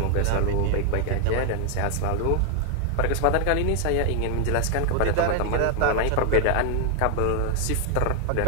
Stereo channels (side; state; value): both; different; correlation 0.00